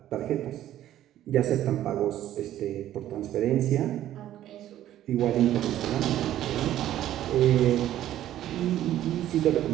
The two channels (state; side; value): quieter; left; 12.6 dB